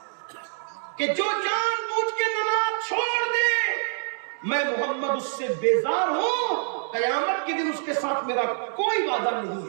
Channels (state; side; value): silent; left; digital silence